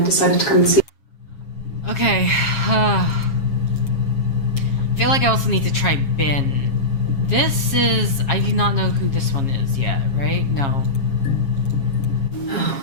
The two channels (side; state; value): right; late; 7.3 ms